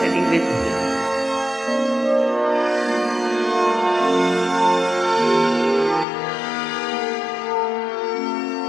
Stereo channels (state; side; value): drops out; right; at 6.1 s